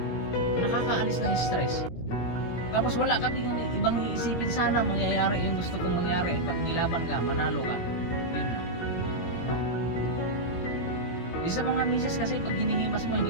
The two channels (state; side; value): late; right; 17 ms